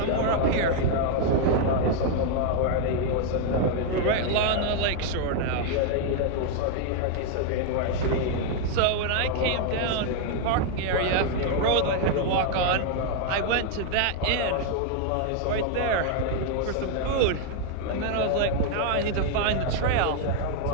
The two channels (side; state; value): both; different; correlation 0.00